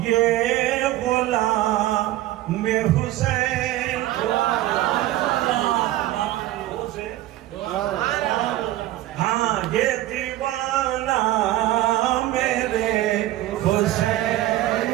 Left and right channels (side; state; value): left; quieter; 15.1 dB